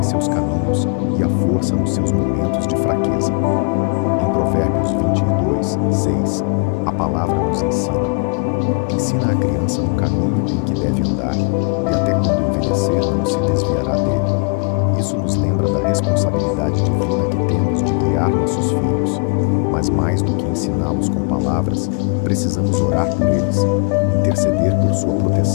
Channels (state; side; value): quieter; right; 33.8 dB